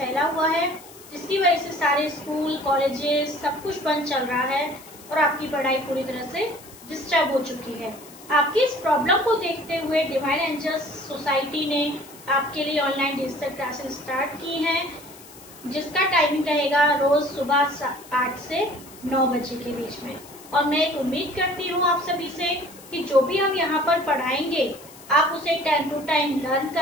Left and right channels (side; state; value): left; noise; hiss, 20 dB below the sound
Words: हुआ है, जिसकी वजह से सारे स्कूल कॉलेजेस सब कुछ बंद चल रहा है और आपकी पढ़ाई पूरी तरह से डिस्टर्ब हो चुकी है। आपकी इस प्रॉब्लम को देखते हुए डिवाइन एंजल्स सोसाइटी ने आपके लिए ऑनलाइन डिजिटल क्लासेस स्टार्ट की हैं, जिसका टाइमिंग रहेगा रोज सुबह 8 से 9 बजे के बीच में। और मैं एक उम्मीद करती हूँ आप सभी से कि जो भी हम यहाँ पर पढ़ाएंगे आप उसे टाइम टू टाइम लर्न